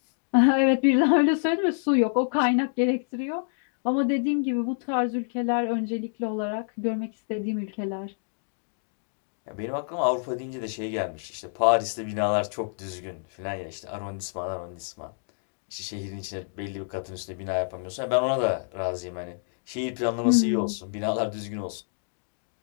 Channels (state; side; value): silent; right; digital silence